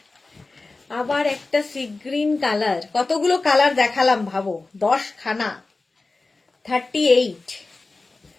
আবার একটা সি গ্রিন কালার। কতগুলো কালার দেখালাম ভাবো, 10 খানা। 38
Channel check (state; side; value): quieter; right; 3.5 dB